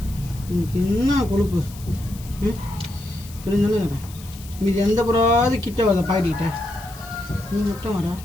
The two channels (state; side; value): noise; left; hiss, 19 dB below the sound